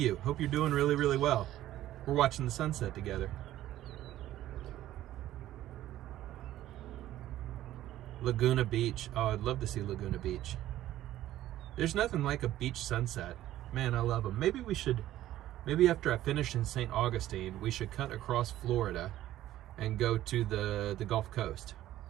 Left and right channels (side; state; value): left; quieter; 13.8 dB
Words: Hope you're doing really, really well. We're watching the sunset together. Laguna Beach. Oh, I'd love to see Laguna Beach. There's nothing like a beach sunset. Man, I love them. Maybe after I finish in St. Augustine, we should cut across Florida and go to the Gulf Coast.